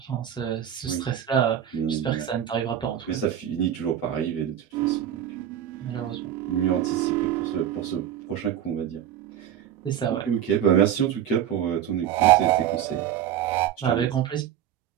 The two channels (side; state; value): left; quieter; 10.2 dB